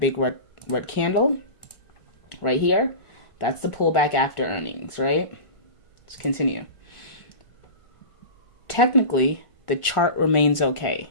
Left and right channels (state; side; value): late; right; 1.4 ms